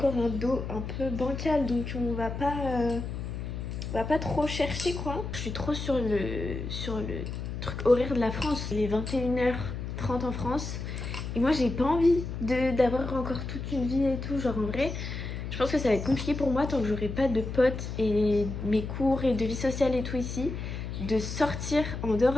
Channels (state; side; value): noise; left; hum, 6 dB below the sound